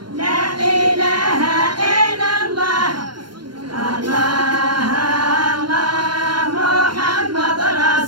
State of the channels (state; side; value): late; left; 0.72 ms